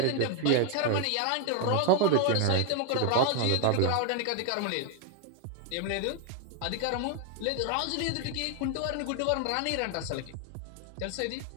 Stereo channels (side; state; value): both; different; correlation 0.00